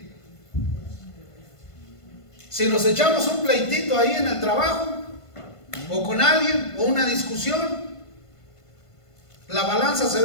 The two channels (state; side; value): late; right; 1.5 ms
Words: Si nos echamos un pleitito ahí en el trabajo, o con alguien, o una discusión, la balanza se